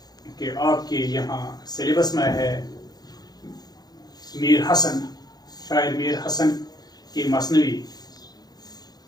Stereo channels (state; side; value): late; right; 0.19 ms